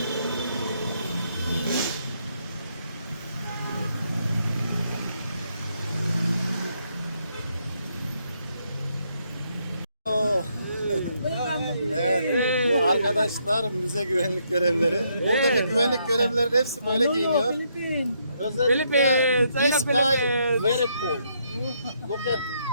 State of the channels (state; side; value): inverted; both; correlation -0.75